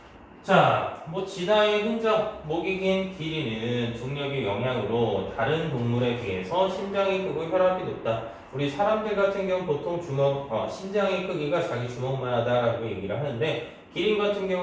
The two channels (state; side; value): identical; both; correlation 1.00